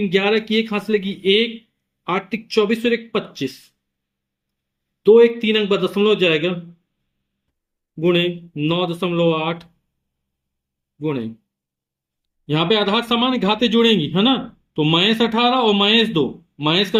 11 की 1 हाथ से लगी 1, 8 तिक 24 और 1 25, 2 1 3 अंक बाद दशमलव हो जाएगा, गुणे 9.8 गुणे, यहां पे आधार समान घातें जुड़ेंगी है ना, तो -18 और -2, माइनस का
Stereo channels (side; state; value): both; identical; correlation 1.00